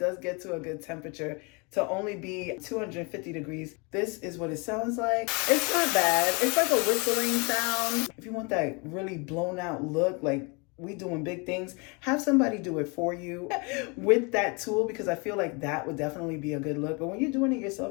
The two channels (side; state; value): right; quieter; 30.9 dB